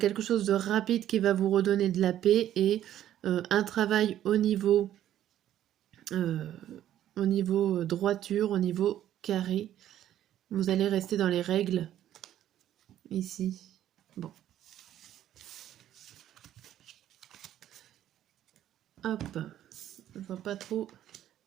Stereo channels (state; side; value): quieter; left; 11.8 dB